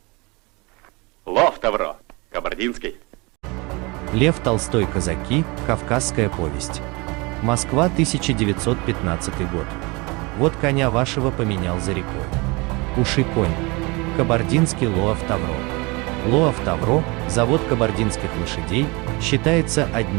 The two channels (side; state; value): left; quieter; 26.5 dB